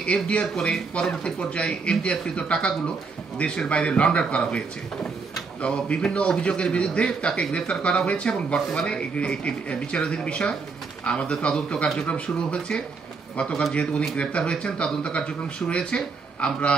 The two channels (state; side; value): quieter; left; 4.7 dB